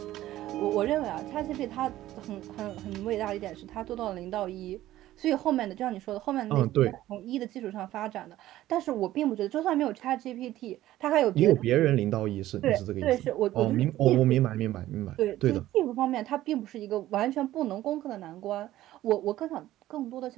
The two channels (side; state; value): left; quieter; 14.6 dB